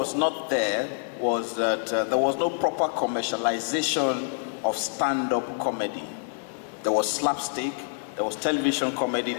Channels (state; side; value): silent; right; 57 dB below the other